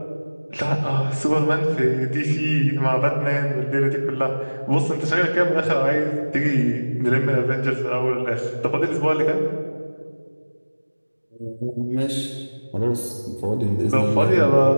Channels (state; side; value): inverted; both; correlation -1.00